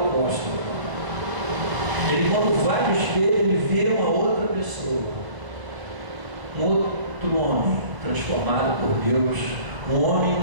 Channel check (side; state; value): left; late; 1.0 ms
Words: Ele, quando vai no espelho, ele vê uma outra pessoa, um outro homem transformado por Deus, um homem